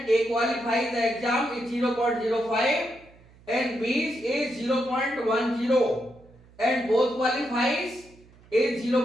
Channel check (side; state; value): right; noise; hum, 26 dB below the sound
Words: A qualifies the exam is 0.05 and B is 0.10 and both qualifies is